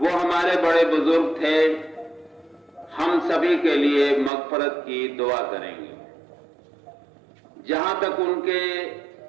ہمارے بڑے بزرگ تھے، ہم سبھی کے لیے مغفرت کی دعا کریں گے۔ جہاں تک ان کے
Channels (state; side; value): drops out; left; at 4.3 s